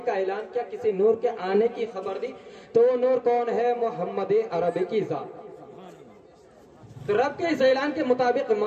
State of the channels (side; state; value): both; identical; correlation 1.00